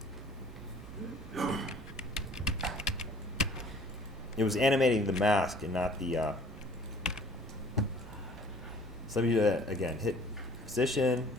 It was animating the mask and not the. So let me do that again. Hit position,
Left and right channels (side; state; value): both; normal; correlation 0.53